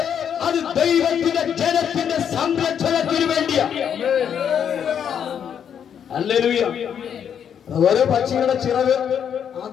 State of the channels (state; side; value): quieter; right; 8.3 dB